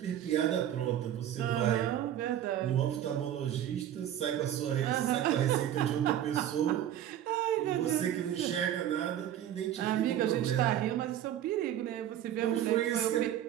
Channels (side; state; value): left; quieter; 11.2 dB